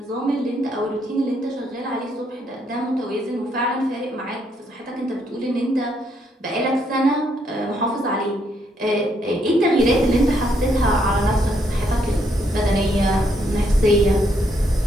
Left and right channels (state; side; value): normal; both; correlation 0.74